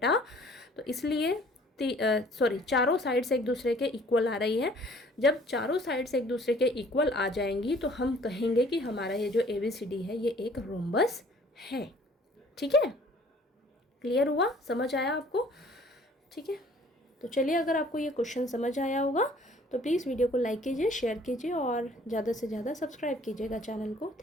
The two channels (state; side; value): normal; both; correlation 0.55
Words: तो इसलिए चारों साइड्स एक दूसरे के इक्वल आ रही हैं। जब चारों साइड्स एक दूसरे के इक्वल आ जाएंगी तो हम कहेंगे कि हमारा ये जो ABCD है ये एक रोम्बस है, ठीक है। क्लियर हुआ, समझ आया आपको, ठीक है। तो चलिए, अगर आपको ये क्वेश्चन समझ आया होगा तो प्लीज़ वीडियो को लाइक कीजिए, शेयर कीजिए और ज़्यादा से ज़्यादा सब्सक्राइब कीजिएगा चैनल को।